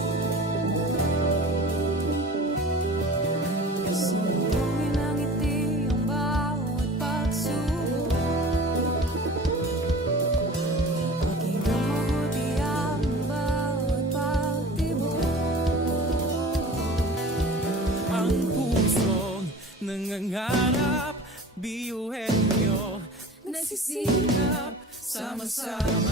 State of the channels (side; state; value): both; normal; correlation 0.40